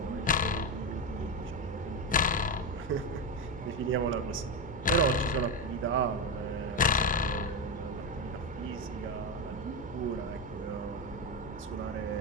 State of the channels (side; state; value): both; normal; correlation 0.12